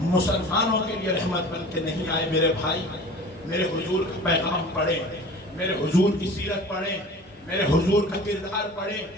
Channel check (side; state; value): both; normal; correlation 0.41